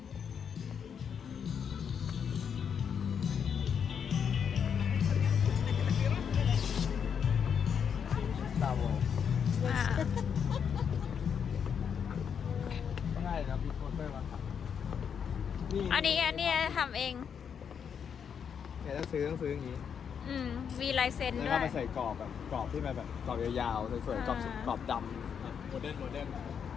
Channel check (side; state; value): right; quieter; 7.4 dB